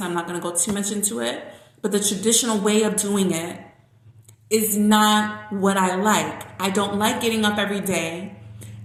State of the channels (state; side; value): identical; both; correlation 1.00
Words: I'm not going to go too much into it, but the traditional way of doing it is not what I like. I don't like getting up every day